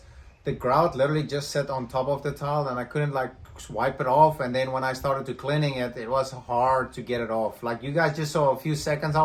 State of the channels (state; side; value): identical; both; correlation 1.00